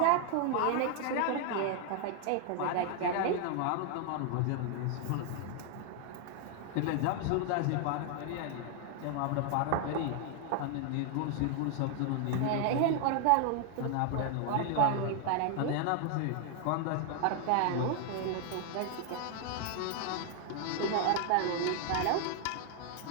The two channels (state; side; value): different; both; correlation 0.00